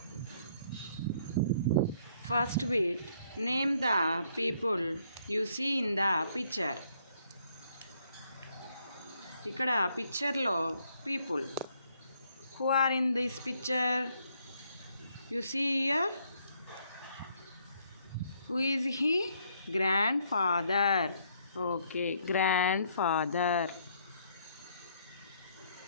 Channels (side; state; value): both; inverted; correlation -0.69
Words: first bit, name the people you see in the picture. ఇక్కడ పిక్చర్లో people who are in this picture. You see here, who is he? Grandfather. Okay, grandfather.